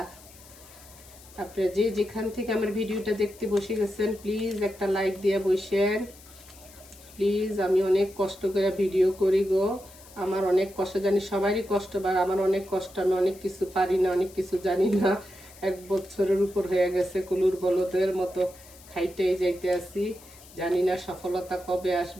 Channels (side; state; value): left; noise; hiss, 22 dB below the sound